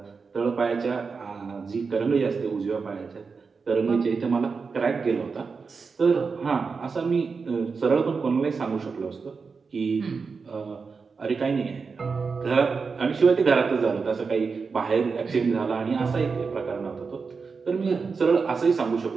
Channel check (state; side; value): quieter; left; 5.0 dB